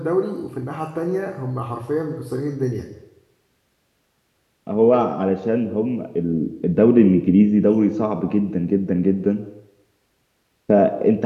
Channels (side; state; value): both; identical; correlation 1.00